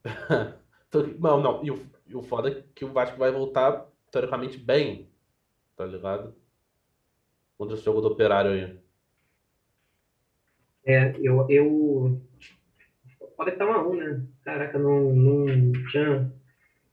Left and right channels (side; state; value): both; identical; correlation 1.00